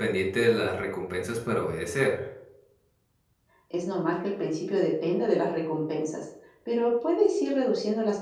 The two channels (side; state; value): both; identical; correlation 1.00